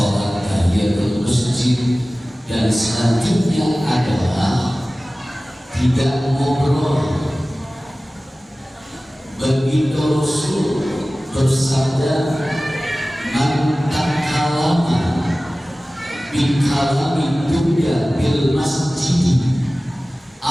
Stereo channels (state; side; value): normal; both; correlation 0.97